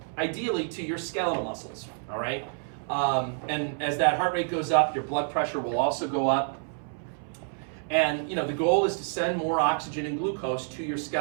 ideally to your skeletal muscles, all right? And as that heart rate goes up, your blood pressure will also go up. And the goal is to send more oxygen and glucose to your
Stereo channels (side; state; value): left; silent; 59 dB below the other